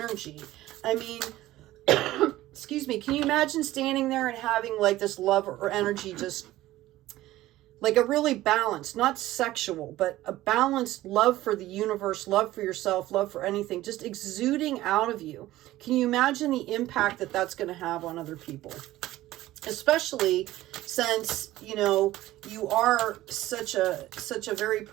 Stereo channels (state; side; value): quieter; left; 15.9 dB